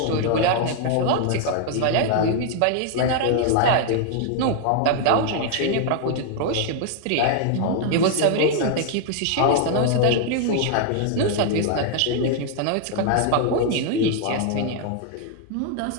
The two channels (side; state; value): both; different; correlation 0.00